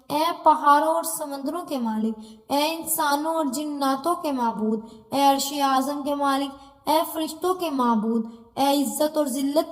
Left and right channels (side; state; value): both; identical; correlation 1.00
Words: اے پہاڑوں اور سمندروں کے مالک، اے انسانوں اور جناتوں کے معبود، اے عرش اعظم کے مالک، اے فرشتوں کے معبود، اے عزت اور